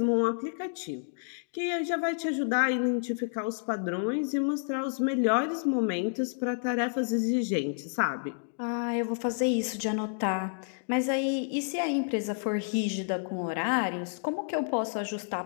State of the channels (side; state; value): right; silent; digital silence